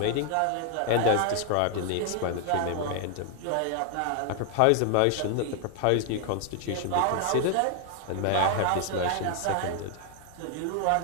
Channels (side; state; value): both; different; correlation 0.00